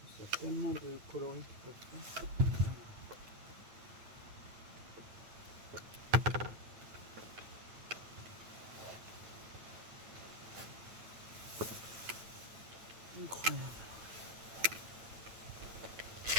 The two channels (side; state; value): left; late; 9.3 ms